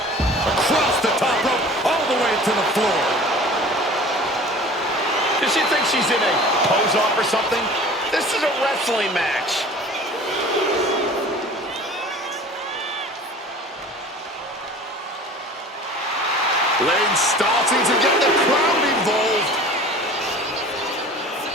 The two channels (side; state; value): both; normal; correlation 0.43